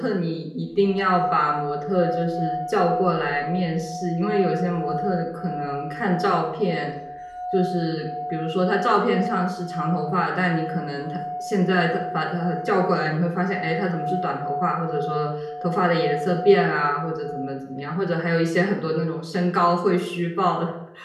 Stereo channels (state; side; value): identical; both; correlation 1.00